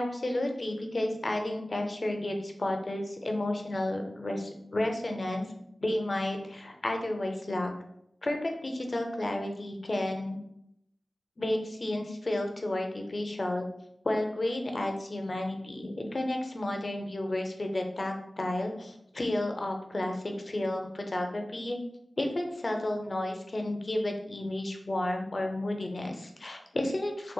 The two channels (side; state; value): both; normal; correlation 0.97